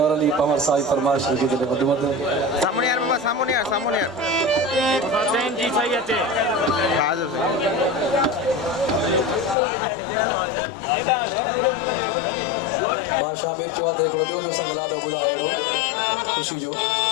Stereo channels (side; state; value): right; drops out; at 9.6 s